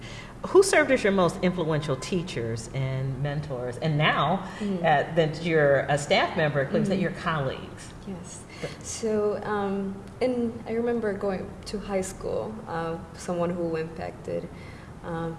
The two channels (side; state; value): both; identical; correlation 1.00